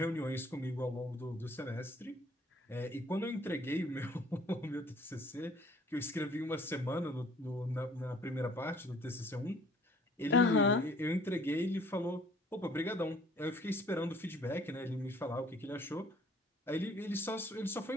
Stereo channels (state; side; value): normal; both; correlation 0.56